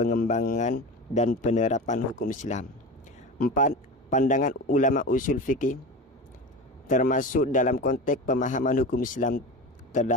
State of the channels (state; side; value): normal; both; correlation 0.28